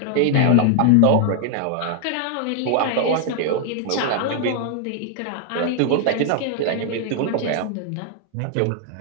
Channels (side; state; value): both; different; correlation 0.00